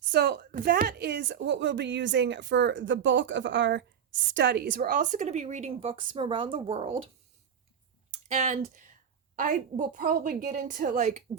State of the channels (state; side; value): quieter; left; 8.1 dB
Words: that is what we'll be using for the bulk of our studies. We're also going to be reading books from around the world, and I will probably get into like